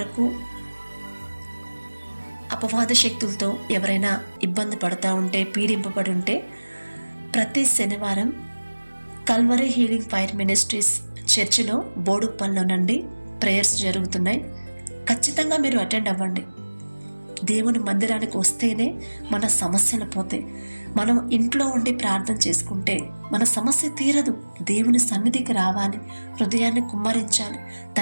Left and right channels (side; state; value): both; inverted; correlation -1.00